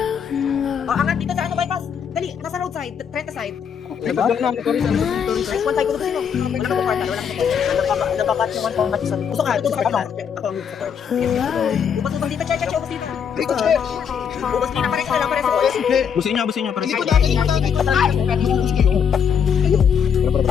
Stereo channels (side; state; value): right; quieter; 7.4 dB